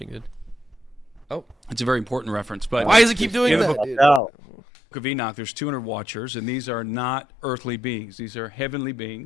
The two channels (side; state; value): right; drops out; at 4.2 s